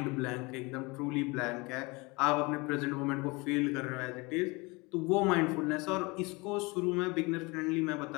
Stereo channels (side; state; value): right; quieter; 26.0 dB